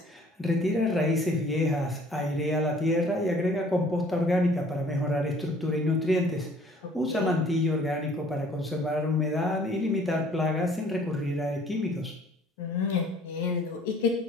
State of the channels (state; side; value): normal; both; correlation 0.55